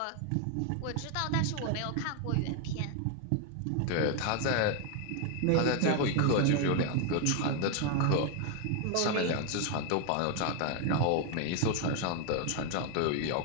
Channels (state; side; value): different; both; correlation 0.01